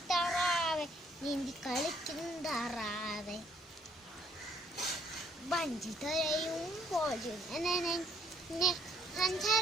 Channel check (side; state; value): both; normal; correlation 0.67